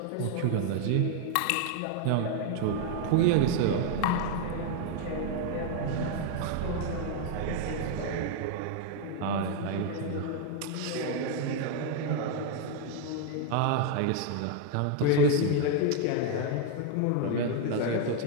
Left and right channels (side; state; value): both; different; correlation 0.00